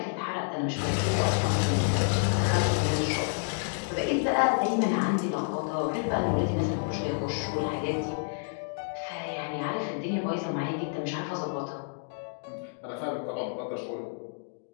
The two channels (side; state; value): right; silent; digital silence